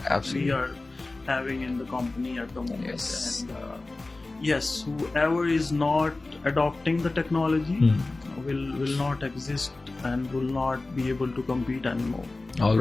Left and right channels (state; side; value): quieter; right; 3.2 dB